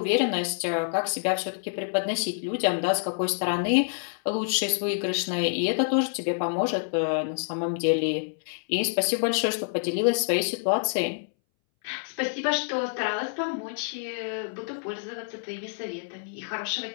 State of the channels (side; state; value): right; silent; 60 dB below the other